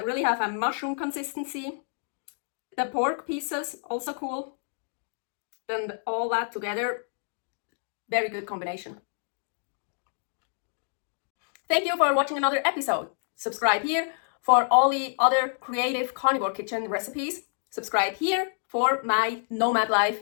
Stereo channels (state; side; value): silent; right; digital silence